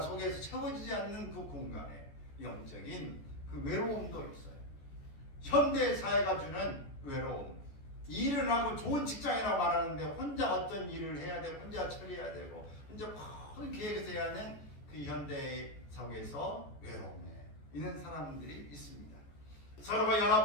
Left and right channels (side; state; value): right; late; 14 ms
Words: 채워지지 않는 그 공간에 영적인 그 외로움도 있어요. 현대 사회가 주는 외로움, 일을 하고 좋은 직장이라고 말하는데 혼자 어떤 일을 해야 되고 혼자 처리해야 되고 혼자 큰 계획에서 해야 하는 그 현대 사회에서 외로움에 있는 사람들이 있습니다. 서로가